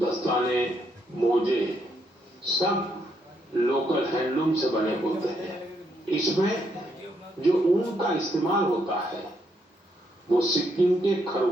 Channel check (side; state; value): both; normal; correlation 0.76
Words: मोजे सब लोकल हैंडलूम से बने होते हैं। इसमें जो ऊन का इस्तेमाल होता है वो सिक्किम के